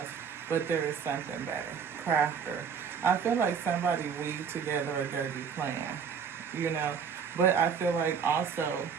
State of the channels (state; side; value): quieter; left; 6.7 dB